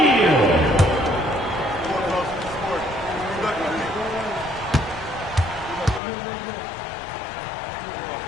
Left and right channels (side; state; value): right; drops out; at 6.0 s